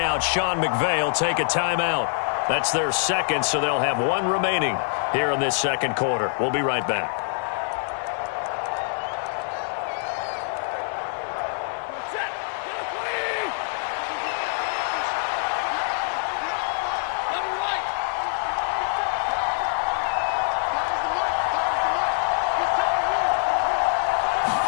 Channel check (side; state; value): right; silent; digital silence